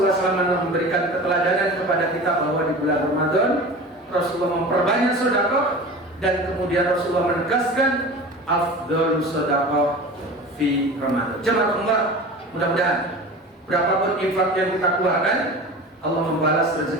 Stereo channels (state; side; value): normal; both; correlation 0.35